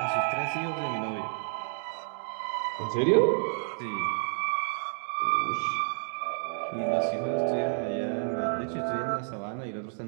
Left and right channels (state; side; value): silent; left; digital silence